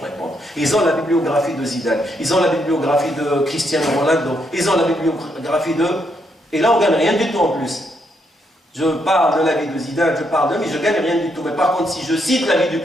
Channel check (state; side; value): normal; both; correlation 0.77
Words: répondre. Ils ont la bibliographie de Zidane. Ils ont la bibliographie de Cristiano Ronaldo. Ils ont la bibliographie de... Et là, on ne gagne rien du tout en plus. Je parle de la vie de Zidane, je parle de lui, je ne gagne rien du tout. Mais par contre, si je cite la vie du